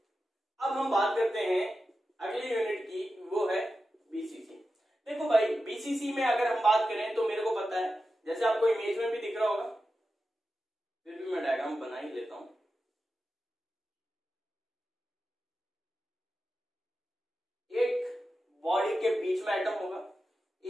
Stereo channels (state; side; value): normal; both; correlation 0.91